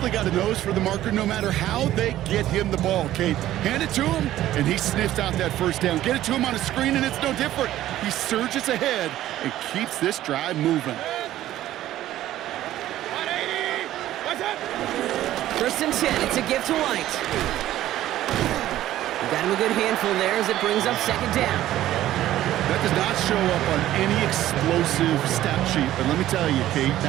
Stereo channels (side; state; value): left; quieter; 13.7 dB